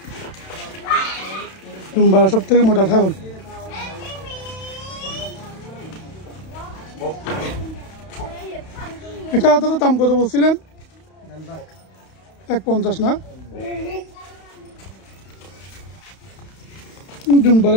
ডুমবারা সব থেকে মোটা ছাগল। এটা দাদা দাম কত বলছিলেন? 150 না?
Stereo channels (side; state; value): right; late; 31 ms